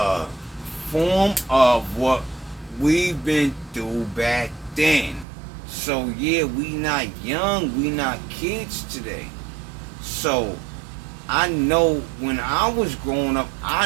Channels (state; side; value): drops out; left; at 5.2 s